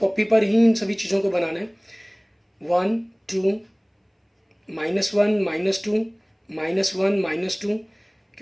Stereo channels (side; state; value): both; identical; correlation 1.00